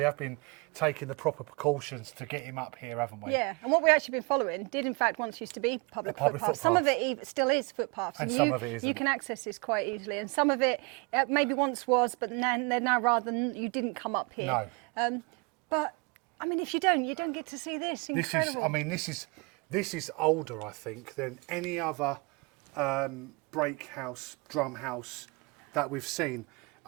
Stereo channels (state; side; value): quieter; left; 29.3 dB